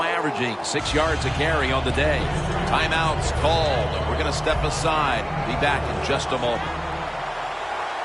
averaging 6 yards a carry on the day. Timeout's called. We're going to step aside. Be back in just a moment.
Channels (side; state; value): both; identical; correlation 1.00